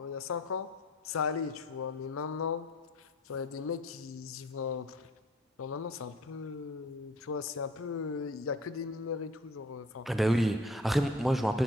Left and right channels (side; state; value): both; normal; correlation 0.51